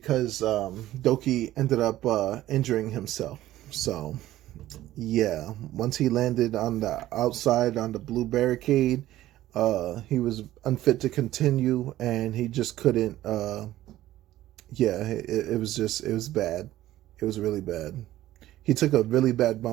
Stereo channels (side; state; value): left; quieter; 14.5 dB